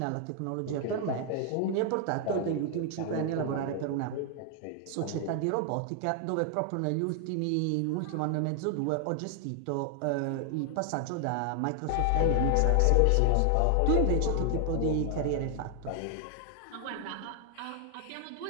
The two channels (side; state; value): both; different; correlation 0.00